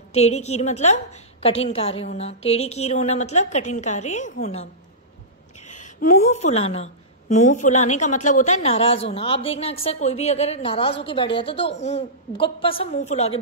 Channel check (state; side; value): normal; both; correlation -0.17